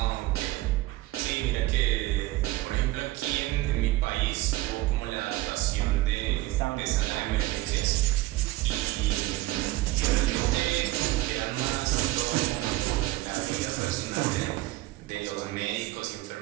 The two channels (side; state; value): left; quieter; 18.0 dB